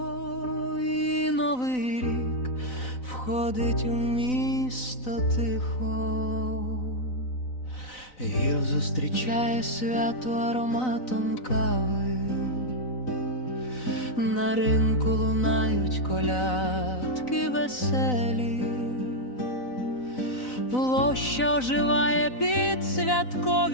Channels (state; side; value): late; right; 4.0 ms